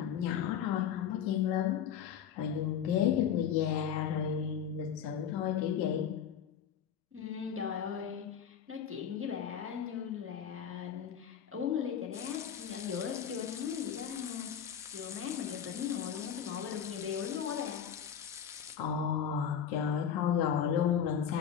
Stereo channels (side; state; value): right; quieter; 8.4 dB